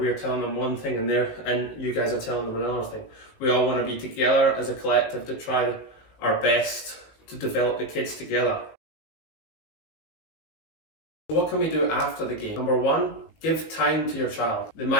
telling them one thing and you guys are telling them another thing. We all want to be together as a collective to try our best to develop the kids together. What can we do after the game? Number one, give time to your child. They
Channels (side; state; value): right; late; 19 ms